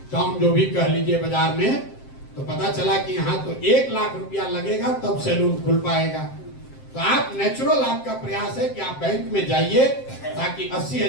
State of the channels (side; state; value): right; late; 7.6 ms